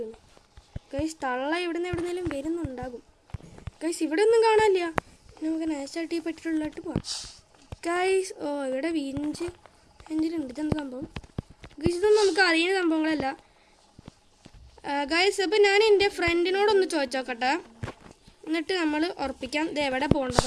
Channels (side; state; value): both; identical; correlation 1.00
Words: ഗൈസ് തള്ള എവിടുന്നേലും വരുന്നുണ്ടാകും. ഗൈസ് ഇവിടെ ഒന്നും കാണാനില്ല. നമുക്ക് നൈസായിട്ട് ഈ പെട്ടിലുള്ളിലോട്ട് പോവാം ഗൈസ്. ഇവിടെ എഞ്ചിനുണ്ട്. ഇതെന്താ സംഭവം ഗൈസ്? ഇതൊന്നും നമുക്ക് അറിയുന്ന സംഭവങ്ങളല്ല. ഗൈസ് അപ്പോൾ ഞാൻ എൻ്റെ ഫ്രണ്ടിനോടൊന്ന് ചോദിച്ചോക്കട്ടെ, എന്നിട്ട് നമ്മൾ ഉറപ്പിക്കാം ഇത് എവിടെ